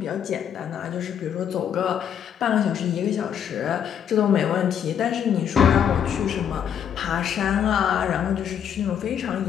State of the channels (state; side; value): quieter; right; 8.7 dB